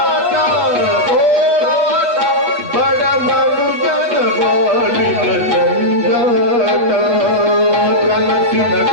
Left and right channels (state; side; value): late; left; 8.4 ms